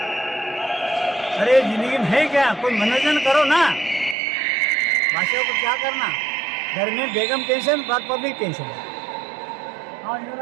अरे जिंदगी में है क्या, कोई मनोरंजन करो ना, बादशाह को क्या करना, घर में बेगम टेंशन, बात पब्लिक टेंशन। हाँ इधर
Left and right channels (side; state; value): left; drops out; at 4.2 s